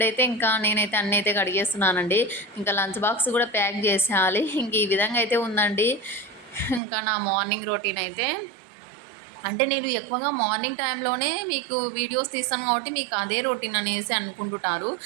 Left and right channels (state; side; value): drops out; left; at 6.8 s